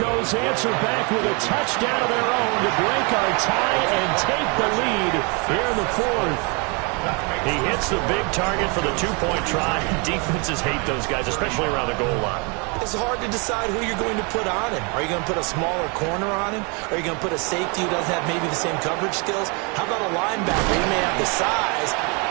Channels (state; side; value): quieter; left; 32.2 dB